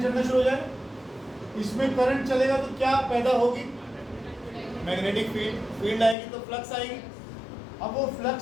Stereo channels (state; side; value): drops out; right; at 6.2 s